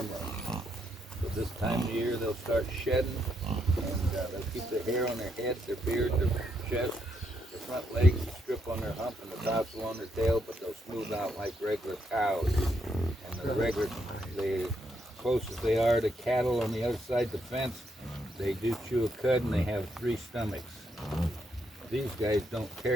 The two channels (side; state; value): both; normal; correlation 0.77